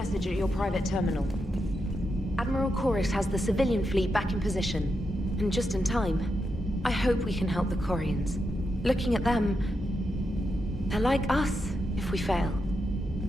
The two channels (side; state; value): both; normal; correlation 0.85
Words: at your private terminal. Admiral Kurus has the civilian fleet back in position, and just in time. I hope we can help the Quarians. Looking at them, they're like us if we fail.